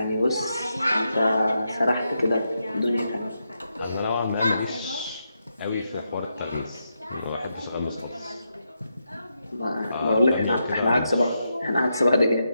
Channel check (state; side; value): inverted; both; correlation -0.84